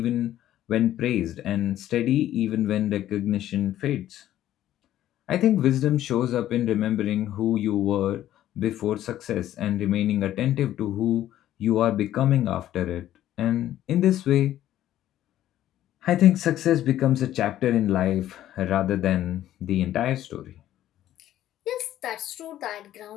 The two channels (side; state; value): right; quieter; 12.7 dB